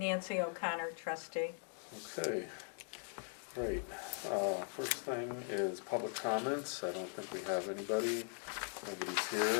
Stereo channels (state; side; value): silent; right; 51 dB below the other